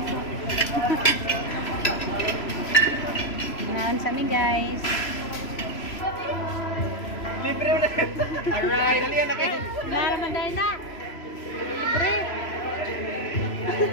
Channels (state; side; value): late; right; 3.0 ms